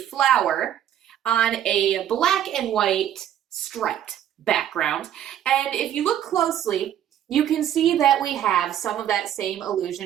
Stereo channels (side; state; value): left; quieter; 10.7 dB